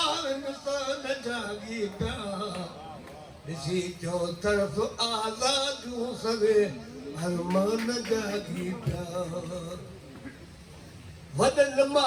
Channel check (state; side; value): identical; both; correlation 1.00